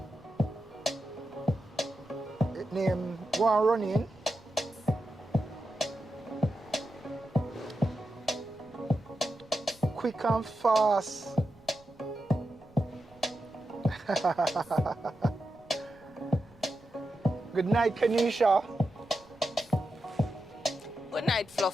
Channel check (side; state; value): right; noise; rumble, 27 dB below the sound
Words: It name go and run in. Quick and fast. Good night, Kanisha. Good night,